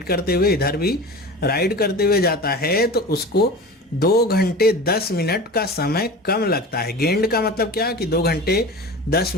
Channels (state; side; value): normal; both; correlation 0.33